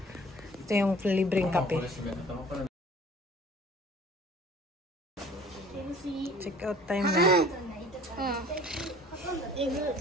Ito yung libreng kape. Check out time na.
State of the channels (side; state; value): both; normal; correlation 0.49